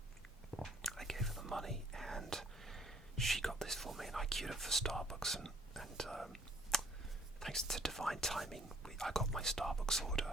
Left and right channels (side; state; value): both; normal; correlation 0.60